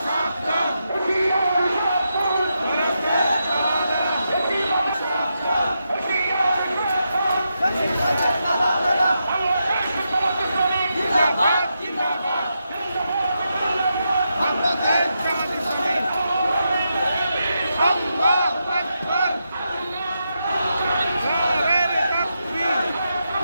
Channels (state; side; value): inverted; both; correlation -0.85